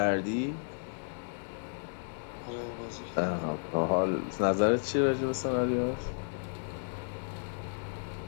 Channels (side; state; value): right; silent; digital silence